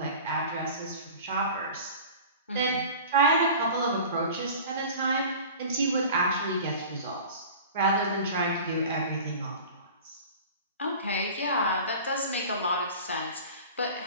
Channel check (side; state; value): both; inverted; correlation -0.39